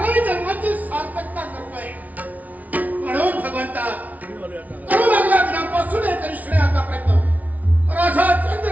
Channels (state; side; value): late; left; 0.073 ms